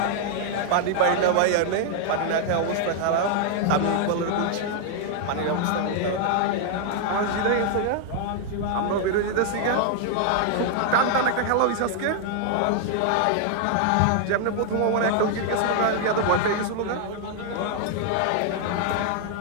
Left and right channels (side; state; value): both; different; correlation 0.00